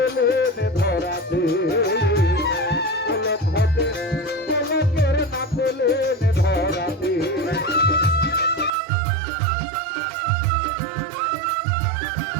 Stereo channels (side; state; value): left; drops out; at 8.7 s